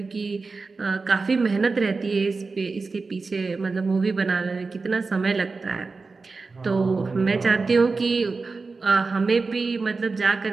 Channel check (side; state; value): left; quieter; 4.1 dB